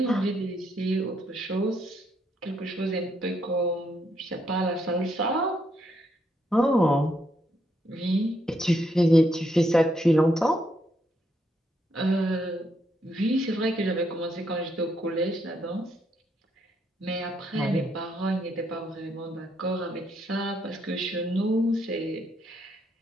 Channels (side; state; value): both; normal; correlation 0.76